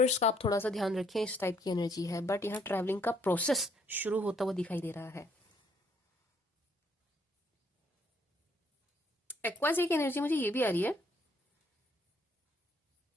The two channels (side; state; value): both; normal; correlation 0.67